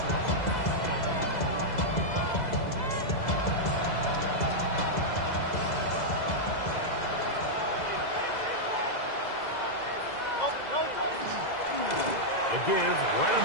A give right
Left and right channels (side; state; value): right; late; 2.0 ms